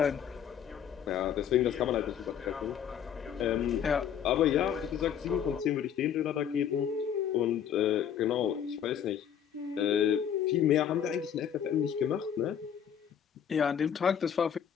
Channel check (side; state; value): right; quieter; 8.8 dB